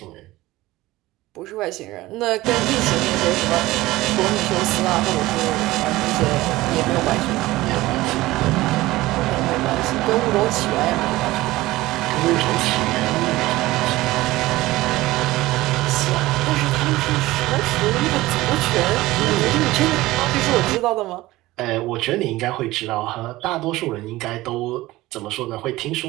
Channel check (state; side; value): quieter; left; 18.1 dB